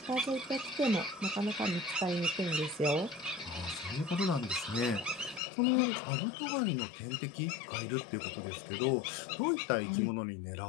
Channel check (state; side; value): drops out; right; at 5.4 s